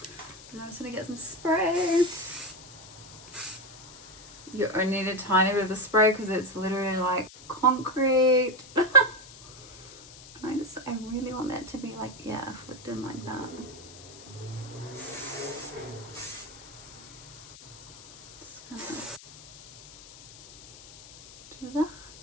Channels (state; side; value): noise; left; hiss, 18 dB below the sound